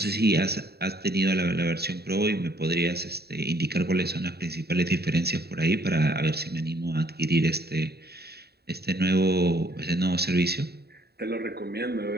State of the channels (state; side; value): late; left; 0.47 ms